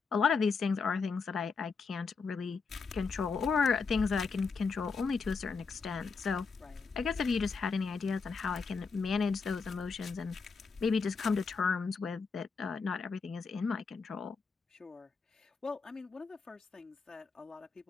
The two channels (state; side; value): quieter; right; 4.9 dB